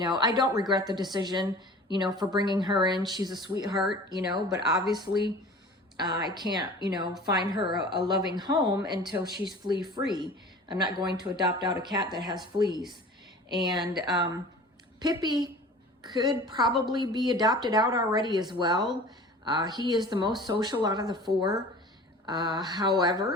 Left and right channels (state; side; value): normal; both; correlation 0.42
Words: don't regret the decision, for bringing her in. She's a sweetheart, but obviously I can't, find her a loving home until she's flea free. I'm not going to adopt out a cat that has fleas. And Pippi could probably be adopted out already as well. He is the most social out of the four.